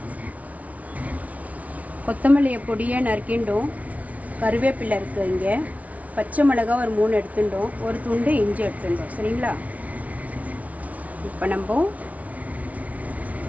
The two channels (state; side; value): late; left; 0.069 ms